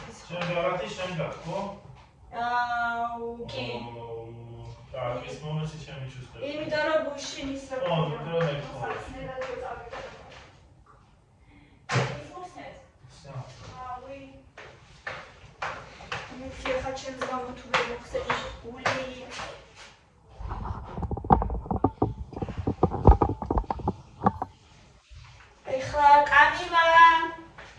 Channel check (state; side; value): identical; both; correlation 1.00